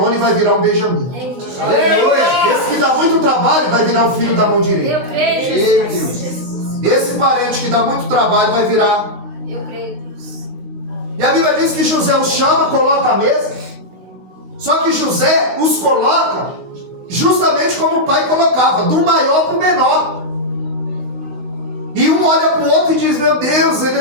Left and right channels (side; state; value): left; late; 16 ms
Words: vai virar um Benjamim. Esse que dá muito trabalho vai virar o filho da mão direita. Eu creio nisso. Esse parente que dá muito trabalho vai virar. Eu creio nisso. E a Bíblia diz que José os chama, coloca a mesa. Só que José os coloca justamente como o pai colocava, do maior para o menor. E um olha para o outro e diz, meu Deus, a